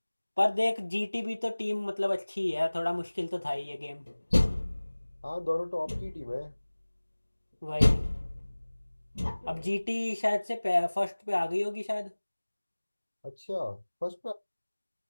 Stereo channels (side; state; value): both; inverted; correlation -1.00